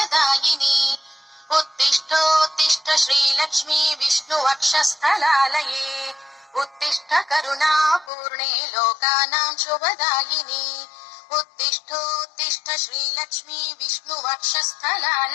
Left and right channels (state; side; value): drops out; right; at 8.1 s